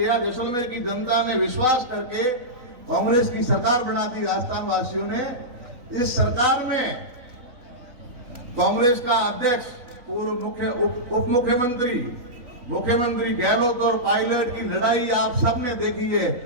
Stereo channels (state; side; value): late; left; 3.5 ms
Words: जैसलमेर की जनता ने विश्वास करके कांग्रेस की सरकार बना दी राजस्थान वासियों ने। इस सरकार में कांग्रेस का अध्यक्ष, पूर्व उप मुख्यमंत्री, मुख्यमंत्री गहलोत और पायलट की लड़ाई आप सबने देखी है।